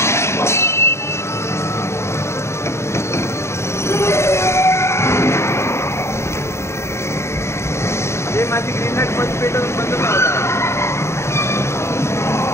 माझी ग्रीन लाईट बंद पेटवून बंद नव्हता.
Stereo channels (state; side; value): late; right; 0.13 ms